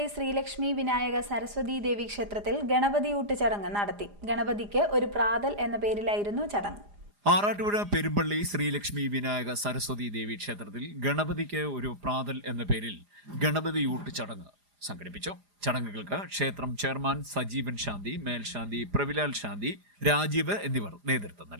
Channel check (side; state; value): left; late; 4.9 ms